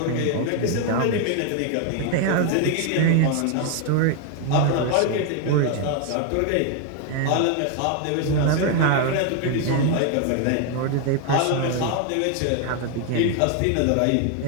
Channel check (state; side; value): different; both; correlation 0.01